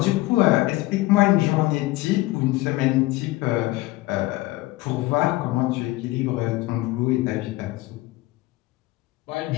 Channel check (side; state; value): right; quieter; 19.2 dB